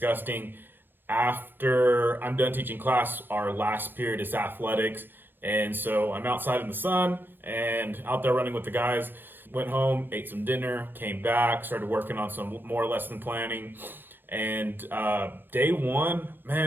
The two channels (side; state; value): left; late; 0.097 ms